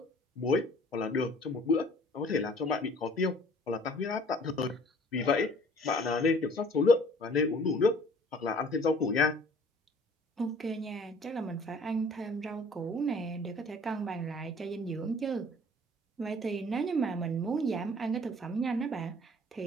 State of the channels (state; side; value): normal; both; correlation 0.52